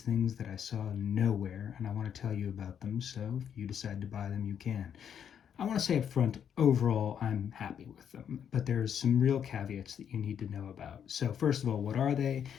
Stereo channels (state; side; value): quieter; right; 8.5 dB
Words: that I saw nowhere, and I want to tell you about them. So if you decide to buy them, you can. I want to say up front, overall, I'm happy with them, but there's some real caveats that you need to know about. So first of all, what are they?